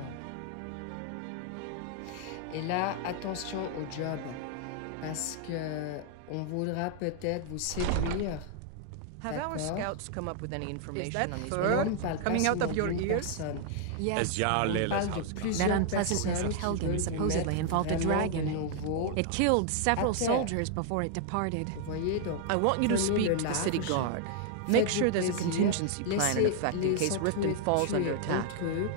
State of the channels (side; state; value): both; different; correlation 0.00